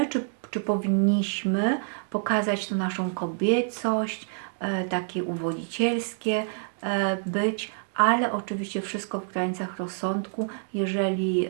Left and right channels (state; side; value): silent; left; digital silence